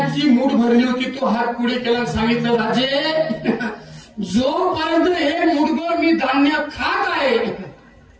मूठ भरली होती, तो हात पुढे केला, सांगितलं राजे जोपर्यंत हे मूठभर मी धान्य खात आहे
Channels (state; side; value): identical; both; correlation 1.00